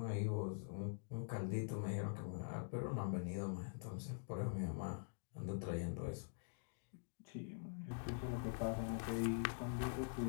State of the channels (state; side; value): silent; right; digital silence